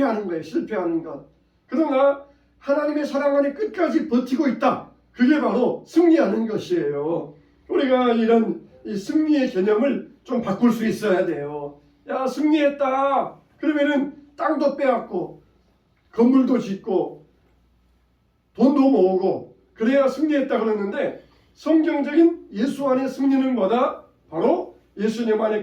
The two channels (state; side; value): identical; both; correlation 1.00